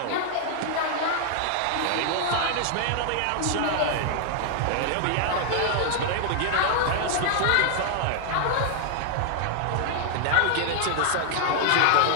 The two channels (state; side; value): different; both; correlation 0.00